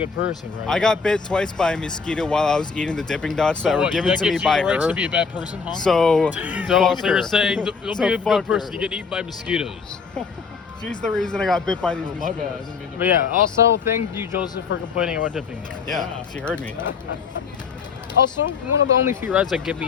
person, right? I got bit twice by a mosquito while I was eating the Dippin' Dots that were given to me by you the right her. to be a bad person, huh? So So fuck you're her. saying don't So be a fuck good person. her. You get eaten by mosquitoes. She's the reason I got bit by these Oh, my mosquitoes. bad. I didn't mean to- But yeah, also thank you, Joseph, for complaining about Dippin' Dots. Yeah, she heard me. Also, one of the only few rides that get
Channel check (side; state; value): right; quieter; 5.4 dB